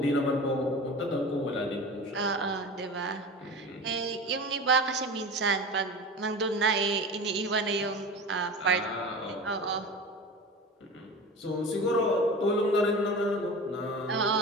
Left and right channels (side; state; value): both; normal; correlation 0.32